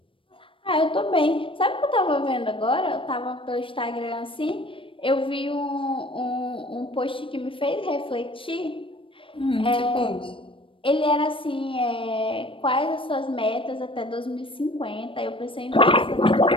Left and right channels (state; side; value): late; right; 0.25 ms